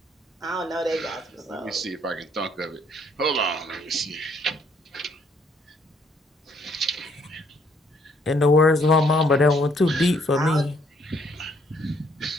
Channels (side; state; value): both; normal; correlation 0.67